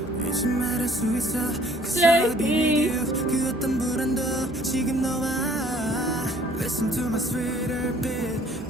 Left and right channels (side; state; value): both; normal; correlation 0.57